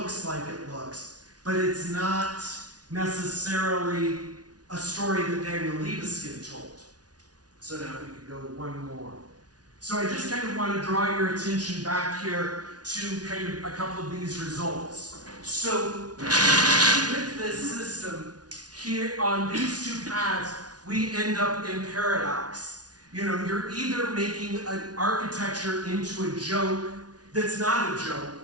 like it looks, but it's not necessarily a story that Daniel Libeskind told. So now we could go one more. So I just kind of want to draw your attention back here to kind of a couple of these results. So with this system, here on these two paths, we end up in paradox. You're either making an architecture into a joke that's not a joke,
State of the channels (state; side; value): late; left; 0.69 ms